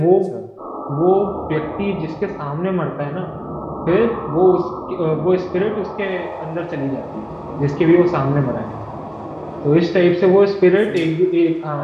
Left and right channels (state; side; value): identical; both; correlation 1.00